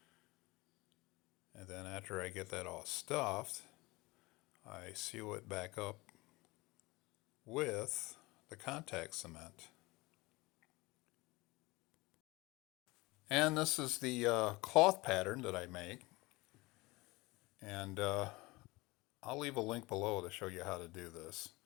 And then after I get that all stuffed, I seal it back up with the contact cement. And this is the cloth pattern that I make. And I'll leave a link below to show you how to do this.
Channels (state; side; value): quieter; right; 22.5 dB